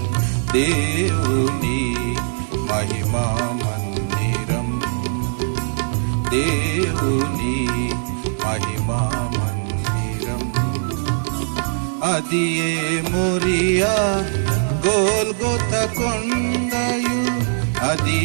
దేవుని మహిమా మందిరం, దేవుని మహిమా మందిరం. అదియే మోరియా గోల్గొత కొండయు,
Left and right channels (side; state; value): left; silent; 65 dB below the other